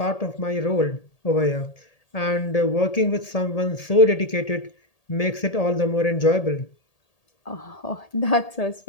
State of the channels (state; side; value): late; right; 1.8 ms